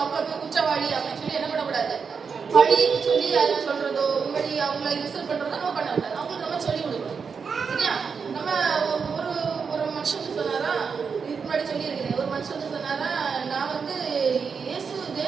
அவங்க குற்றவாளி அப்படின்னு சொல்லி என்ன பண்ணக்கூடாது, பழி சொல்லி அதை சொல்றதோ இப்படி அவங்கள இன்சல்ட் பண்றதோ நம்ம பண்ணக்கூடாது. அவங்களுக்கு நம்ம சொல்லி கொடுக்கணும். சரியா? நம்ம ஒரு மனுஷனுக்கு சொன்னாரா, இதுக்கு முன்னாடி சொல்லி இருக்கிறேன், ஒரு மனுஷனுக்கு சொன்னாரா, நான் இயேசு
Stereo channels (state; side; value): quieter; left; 5.8 dB